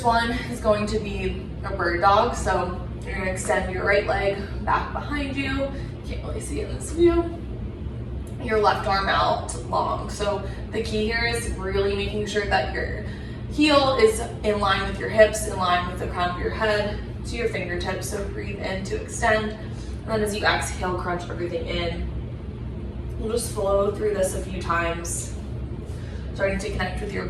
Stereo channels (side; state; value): both; identical; correlation 1.00